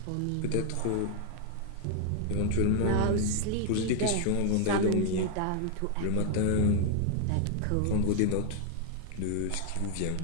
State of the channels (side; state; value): both; different; correlation 0.00